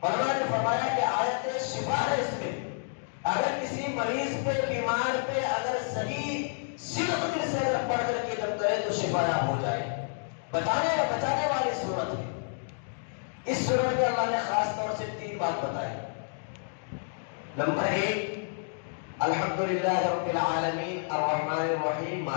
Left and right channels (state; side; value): silent; right; digital silence